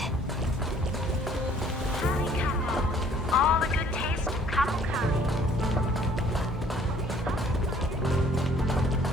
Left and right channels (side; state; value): both; normal; correlation 0.58